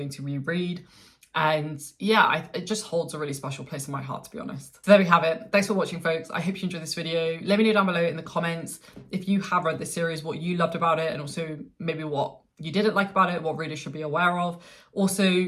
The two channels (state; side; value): identical; both; correlation 1.00